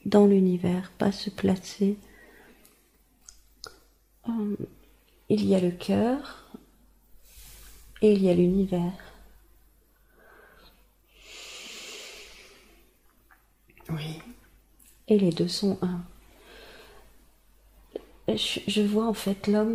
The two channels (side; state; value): both; identical; correlation 1.00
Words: dans l'univers, pas se placer. Il y a le cœur et il y a l'univers. Oui. Et les deux sont un. Je vois en fait